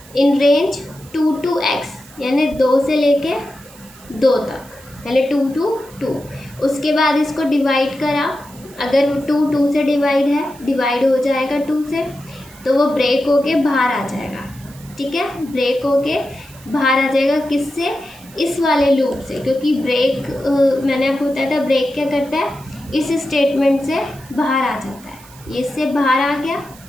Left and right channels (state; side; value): noise; right; hiss, 22 dB below the sound